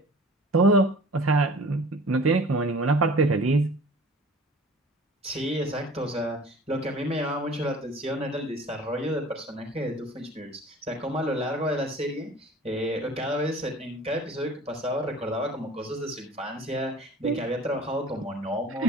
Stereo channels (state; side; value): normal; both; correlation 0.45